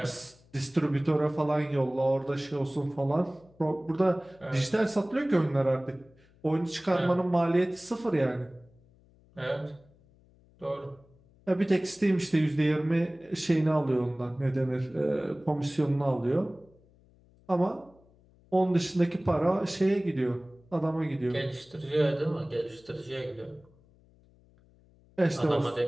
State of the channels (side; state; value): left; noise; hum, 29 dB below the sound